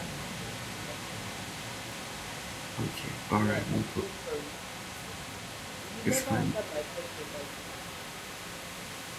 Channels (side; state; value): both; identical; correlation 1.00